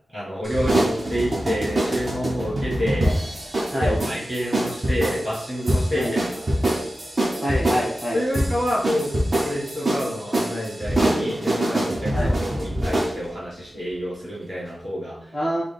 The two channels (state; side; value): normal; both; correlation 0.93